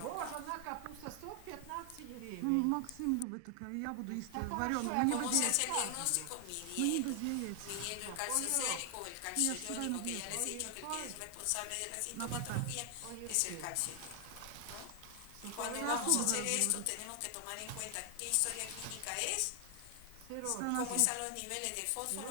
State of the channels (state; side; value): different; both; correlation 0.00